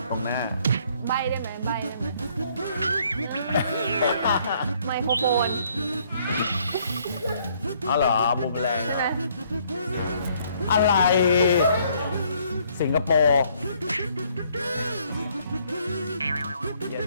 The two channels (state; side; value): inverted; both; correlation -0.65